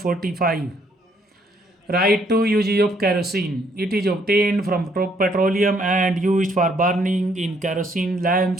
Write two uses of kerosene. It is obtained from petroleum and used for burning in kerosene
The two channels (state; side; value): normal; both; correlation 0.68